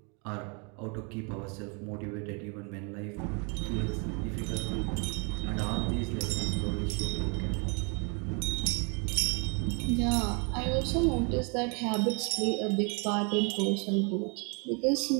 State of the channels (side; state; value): left; quieter; 35.0 dB